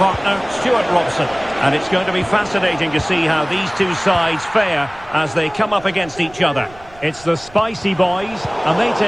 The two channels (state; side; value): noise; right; rumble, 22 dB below the sound